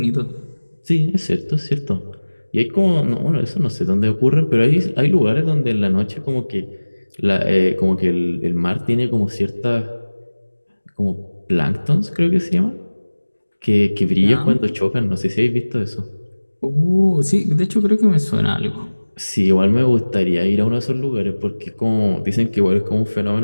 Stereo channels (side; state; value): both; inverted; correlation -1.00